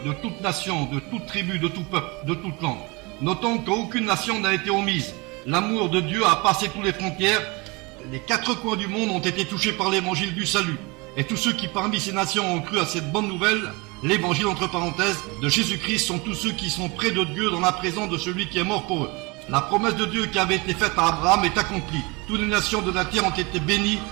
de toute nation, de toute tribu, de tout peuple, de toute langue. Notons qu'aucune nation n'a été omise. L'amour de Dieu a passé toutes les frontières. Les 4 coins du monde ont été touchés par l'évangile du salut. Et tous ceux qui parmi ces nations ont cru à cette bonne nouvelle, l'évangile entre parenthèses, de Jésus-Christ, sont tous ceux qui sont près de Dieu dans la présence de celui qui est mort pour eux. La promesse de Dieu qui avait été faite à Abraham est accomplie. Toutes les nations de la terre ont été bénies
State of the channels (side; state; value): left; quieter; 26.6 dB